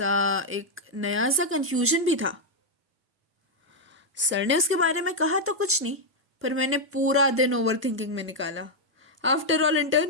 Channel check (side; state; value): both; normal; correlation -0.01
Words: एक नया सा कंफ्यूजन भी था। सर ने उसके बारे में कहा तो कुछ नहीं, पर मैंने पूरा दिन ओवर थिंकिंग में निकाला। आफ्टर ऑल